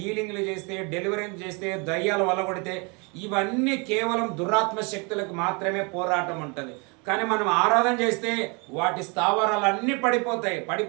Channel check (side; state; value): left; quieter; 31.5 dB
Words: చేస్తే, డెలివరీ చేస్తే, దయ్యాలు వల్లగొడితే, ఇవన్నీ కేవలం దురాత్మ శక్తులకు మాత్రమే పోరాటం ఉంటుంది. కానీ మనం ఆరాధన చేస్తే వాటి స్థావరాలన్నీ పడిపోతాయి.